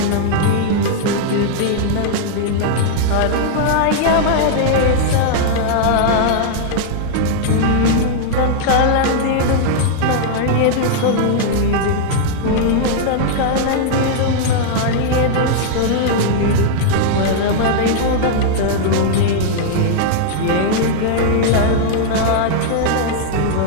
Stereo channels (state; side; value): different; both; correlation -0.01